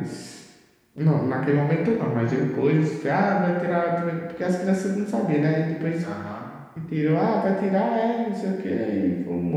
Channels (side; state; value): both; identical; correlation 1.00